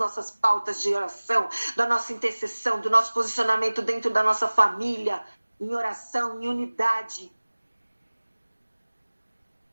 pautas de oração, da nossa intercessão, do nosso posicionamento dentro da nossa família, em oração, em unidade.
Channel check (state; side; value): inverted; both; correlation -1.00